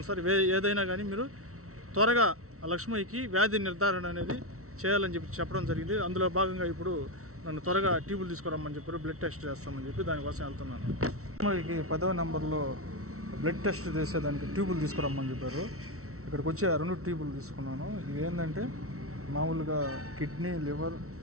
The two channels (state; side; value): late; left; 0.63 ms